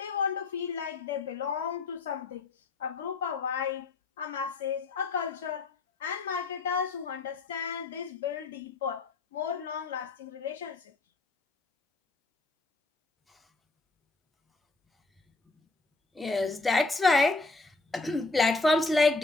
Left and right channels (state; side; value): quieter; right; 3.6 dB